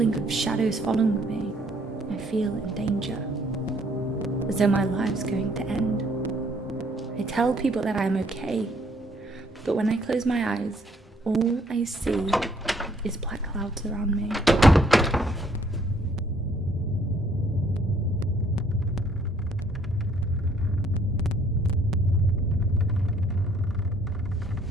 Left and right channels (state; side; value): normal; both; correlation 0.64